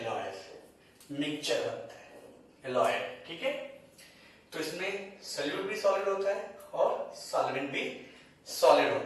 मिक्सचर बनता है एलॉयल, ठीक है। तो इसमें सॉल्यूट भी सॉलिड होता है और सॉल्वेंट भी सॉलिड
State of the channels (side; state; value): both; identical; correlation 1.00